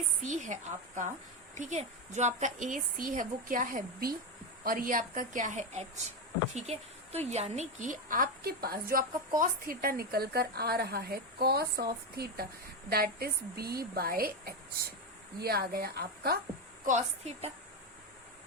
सी है आपका, ठीक है, जो आपका ए सी है वो क्या है, बी, और ये आपका क्या है, एच। ठीक है, तो यानी कि आपके पास जो आपका कॉस थीटा निकल कर आ रहा है, cos of theta that is B by H, ये आ गया आपका कॉस थीटा।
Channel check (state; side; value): normal; both; correlation 0.12